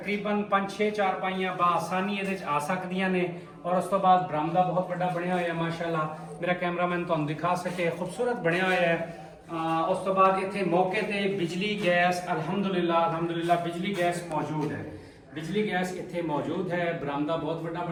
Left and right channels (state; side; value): identical; both; correlation 1.00